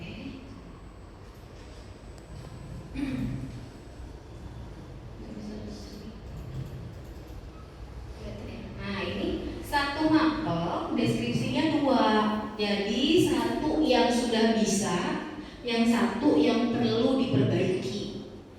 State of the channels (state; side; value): identical; both; correlation 1.00